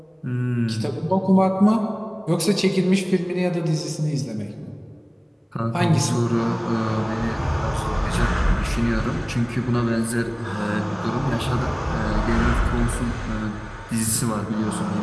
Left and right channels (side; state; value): both; identical; correlation 1.00